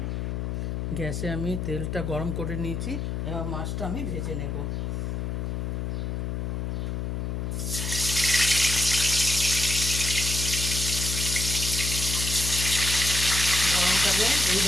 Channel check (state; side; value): noise; left; hum, 3 dB below the sound